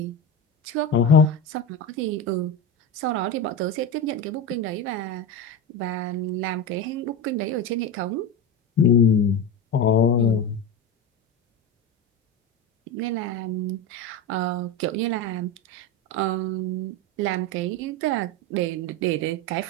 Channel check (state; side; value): normal; both; correlation 0.21